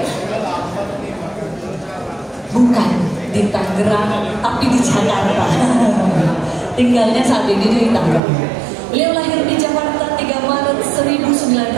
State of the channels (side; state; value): left; drops out; at 8.2 s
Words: bukan di Tangerang, tapi di Jakarta. Tinggalnya saat ini di Tangerang. Beliau lahir di Jakarta 3 Maret